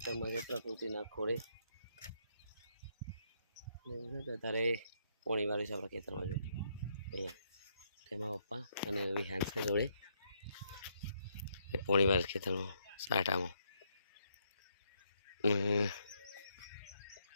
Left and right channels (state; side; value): inverted; both; correlation -0.74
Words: જે પ્રકૃતિના ખોળે તારે પોણી વાળી છે આપણા ખેતરમાં. જો અહીંયા તેમાં પપ્પા અને વિહાન છે જોડે એ પોણી વાળી ખેતરમાં સાટામાં